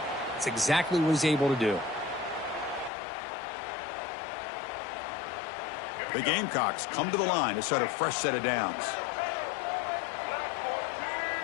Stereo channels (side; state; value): right; drops out; at 2.9 s